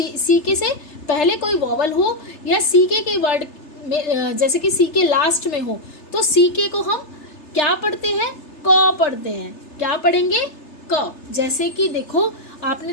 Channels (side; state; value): right; late; 3.3 ms